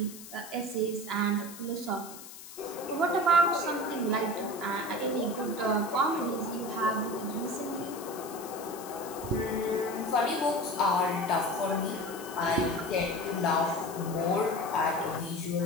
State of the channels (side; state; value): left; noise; hiss, 14 dB below the sound